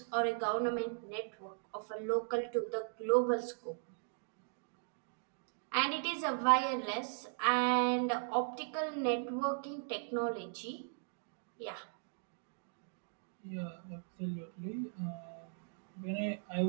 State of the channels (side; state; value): left; silent; digital silence